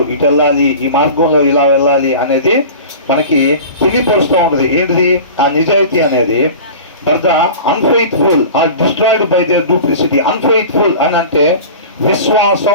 ఇటు వెళ్ళాలి, ఈ మార్గంలో ఇలా వెళ్ళాలి అనేది మనకి తెలియపరుస్తూ ఉంటుంది. ఏంటిది ఆ నిజాయితీ అనేది? But the unfaithful are destroyed by their duplicity. Unfaithful అని అంటే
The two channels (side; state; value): both; inverted; correlation -0.37